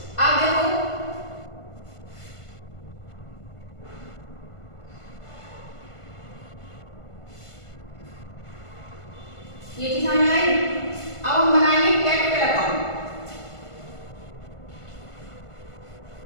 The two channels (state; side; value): late; right; 1.5 ms